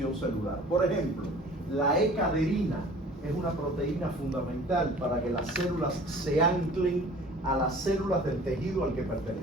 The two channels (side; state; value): both; normal; correlation 0.47